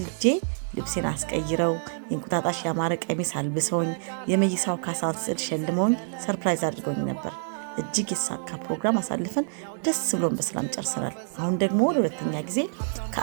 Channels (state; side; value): silent; left; digital silence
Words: ልብሴን አስቀይረው የእንቁጣጣሽ ያማረ ቀሚስ አልብሰውኝ የመይሳው ካሳን ስዕል ሸልመውኝ ሰርፕራይዝ አድርገውኝ ነበር። እጅግ የተሳካ ፕሮግራም አሳልፈን ደስ ብሎን በሰላም ጨርሰናል። አሁን ደግሞ ለሁለተኛ ጊዜ